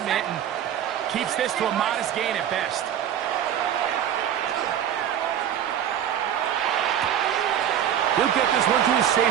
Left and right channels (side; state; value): left; quieter; 10.0 dB